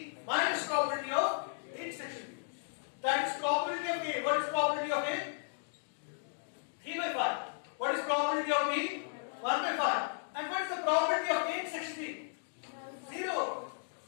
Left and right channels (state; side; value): silent; right; digital silence